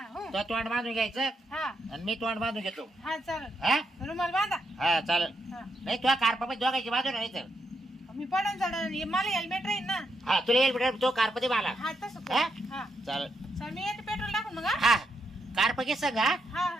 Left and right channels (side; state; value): both; normal; correlation 0.81